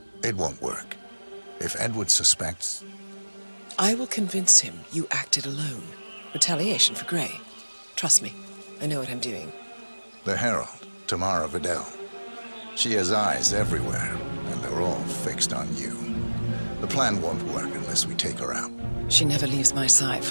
It won't work. If Edward suspects... I will convince him you acted alone. Retaliation for Grey. Trust me, I know what I'm doing. The Herald, Tamara Vidal. She has eyes everywhere, and they're all fixed on you. The plan won't work unless we take her out. She never leaves my side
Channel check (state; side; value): inverted; both; correlation -1.00